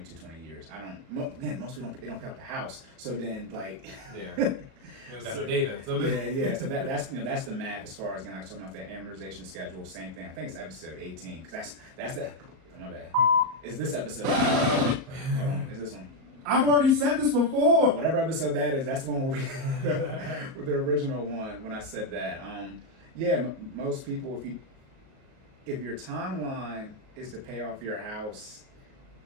years. I don't. Again, most people don't pay off the house. So then like. Yeah. You don't got no data. So yeah. So that's the math as far as like talking about the amortization schedule. Same thing. I think it's episode 18 because that's the. Oh my bad. It's this episode. Hold on. It's this one. I've already said this before. Whatever episode that is, that's the one where with the original one when I said that. Most people, if your timeline is to pay off your house,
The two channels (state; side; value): late; left; 38 ms